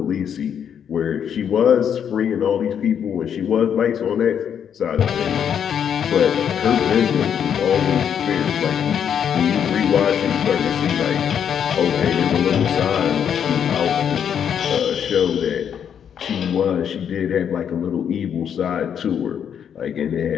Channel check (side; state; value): right; quieter; 8.4 dB